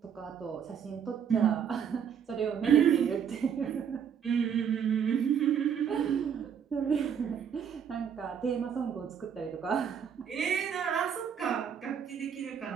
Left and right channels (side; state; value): left; quieter; 7.8 dB